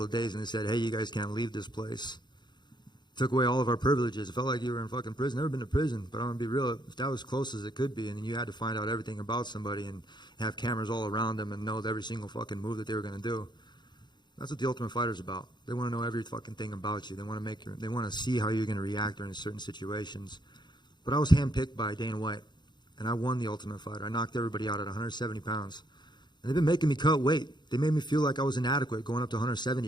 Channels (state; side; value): late; right; 0.21 ms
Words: of days and they said, "Hey, you guys can't leave this place." Took away all of our privileges. It felt like you were in fucking prison. Never been to prison, but I'm gonna be real. If that was close as it could be, and then you had to find out everything about somebody and have cameras all around them and know every single fucking move that they were gonna do. That's what the Ultimate Fighter's about. They want to know every fucking thing about you. They want to see how you're gonna react during certain situations. But I was handpicked by Dana White, and I won the Ultimate Fighter. I knocked everybody out at 170 pounds. And they've been making me cut weight. They made me feel like I was inadequate going up to